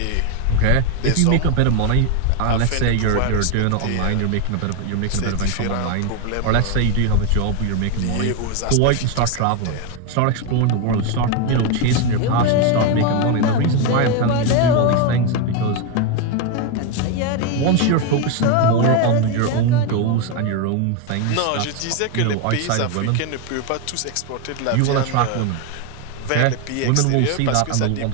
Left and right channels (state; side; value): different; both; correlation 0.02